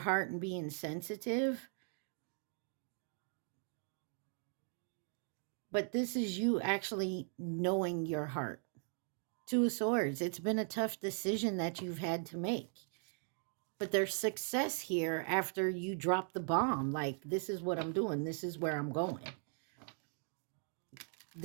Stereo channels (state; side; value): silent; left; 52 dB below the other